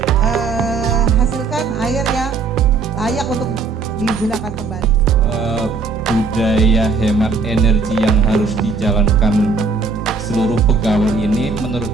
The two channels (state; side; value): quieter; left; 4.5 dB